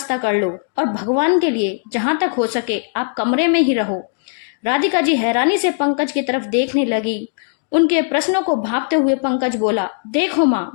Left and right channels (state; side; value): silent; right; digital silence